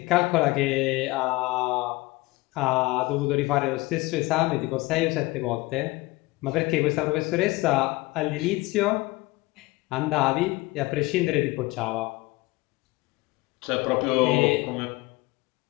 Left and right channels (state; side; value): quieter; right; 21.6 dB